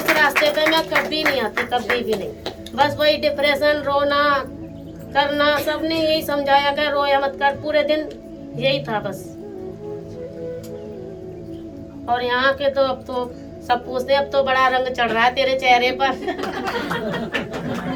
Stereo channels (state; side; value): identical; both; correlation 1.00